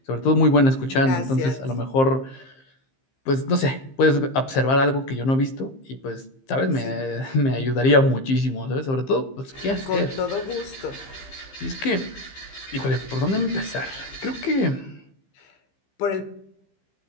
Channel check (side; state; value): right; late; 15 ms